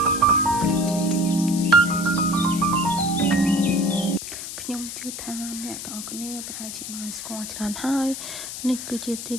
ខ្ញុំជឿថាអ្នកទាំងអស់គ្នាប្រហែលជាបានស្គាល់ច្រើនហើយនេះគឺជាទី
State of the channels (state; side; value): noise; left; hiss, 8 dB below the sound